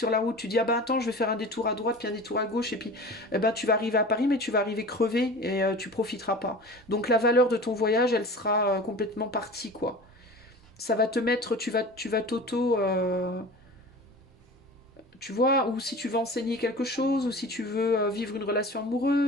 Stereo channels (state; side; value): normal; both; correlation 0.37